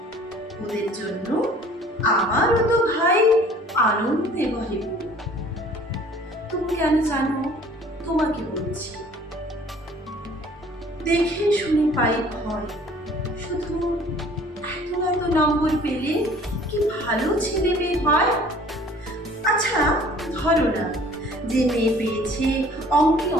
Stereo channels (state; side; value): normal; both; correlation 0.52